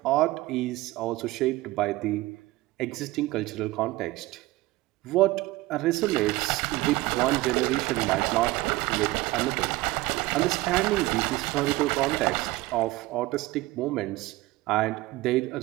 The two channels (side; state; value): left; quieter; 19.4 dB